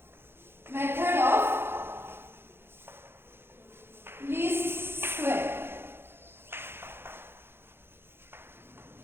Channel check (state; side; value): late; left; 0.11 ms